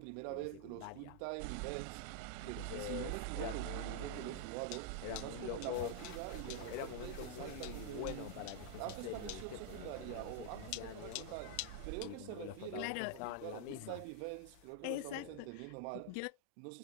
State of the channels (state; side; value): different; both; correlation -0.01